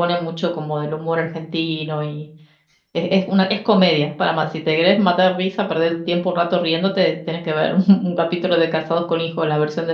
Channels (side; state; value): both; identical; correlation 1.00